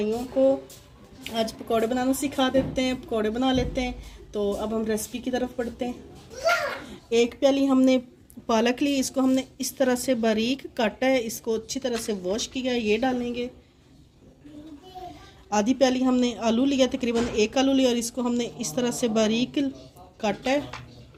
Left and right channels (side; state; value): both; identical; correlation 1.00